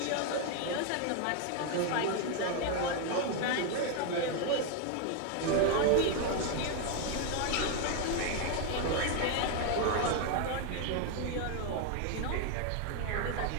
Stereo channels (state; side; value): different; both; correlation 0.01